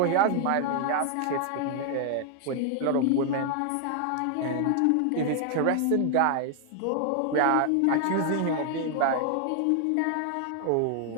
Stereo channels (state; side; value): different; both; correlation 0.00